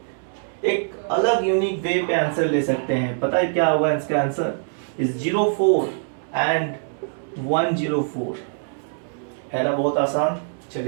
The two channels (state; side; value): silent; left; digital silence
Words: एक अलग यूनिक वे पे आंसर ले सकते हैं। पता है क्या होगा इसका आंसर? इज 04 एंड 104, है ना, बहुत आसान।